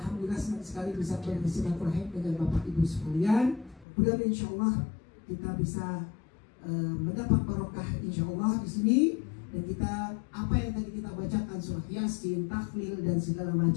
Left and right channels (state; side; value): drops out; right; at 3.9 s